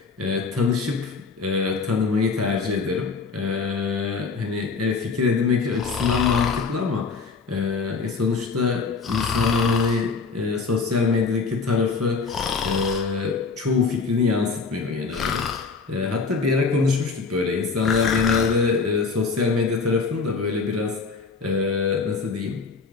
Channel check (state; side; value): quieter; right; 4.7 dB